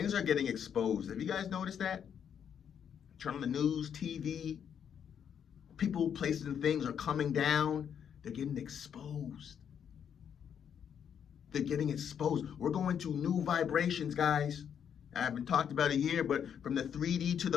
are getting exposed. Have you guys noticed that? Turn on the news, TV, people, places, and things are coming down. They're getting exposed. They're getting exposed. We're going to new vibrations, guys. I haven't talked about it here, but from the 3D to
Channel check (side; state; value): right; quieter; 8.3 dB